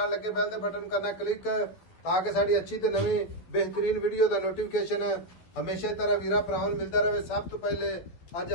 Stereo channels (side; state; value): right; late; 12 ms